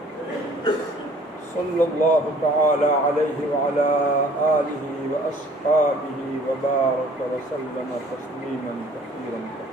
صلى الله تعالى عليه وعلى آله وأصحابه وبارك وسلم تسليما كثيرا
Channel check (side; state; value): both; normal; correlation 0.54